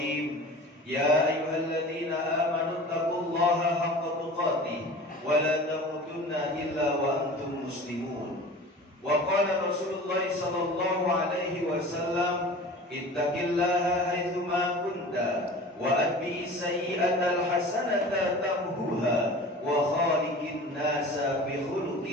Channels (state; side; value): normal; both; correlation 0.39